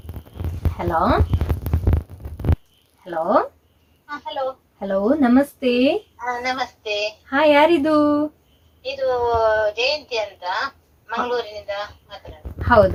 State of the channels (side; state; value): both; identical; correlation 1.00